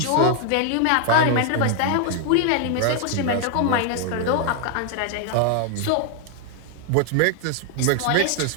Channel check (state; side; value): different; both; correlation 0.00